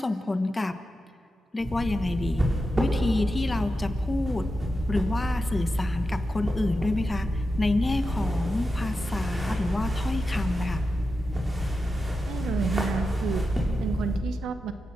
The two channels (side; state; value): both; normal; correlation 0.90